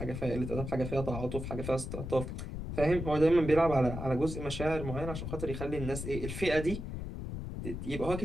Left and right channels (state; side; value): noise; left; rumble, 6 dB below the sound